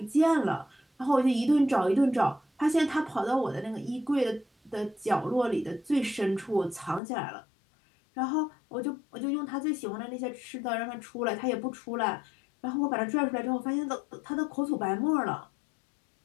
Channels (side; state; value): right; drops out; at 7.0 s